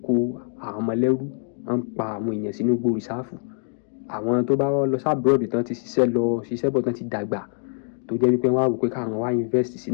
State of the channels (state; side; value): silent; right; digital silence